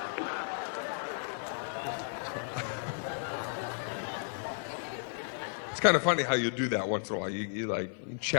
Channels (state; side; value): silent; right; digital silence